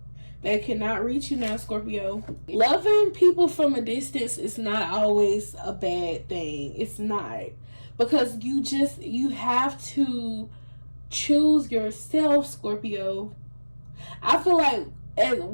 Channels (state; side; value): inverted; both; correlation -1.00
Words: They cannot reach you now, Scorpio. Loving people from a distance is not always a bad thing. It's not. Because you have to choose yourself, Scorpio. I feel like